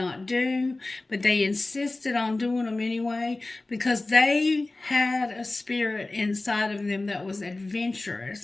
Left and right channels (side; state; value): right; quieter; 3.0 dB